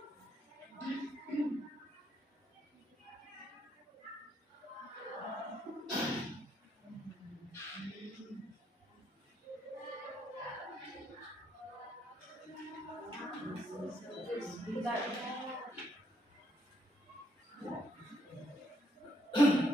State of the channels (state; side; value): normal; both; correlation 0.73